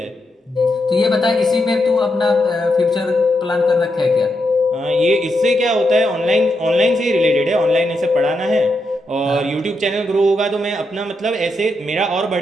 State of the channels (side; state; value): both; normal; correlation 0.83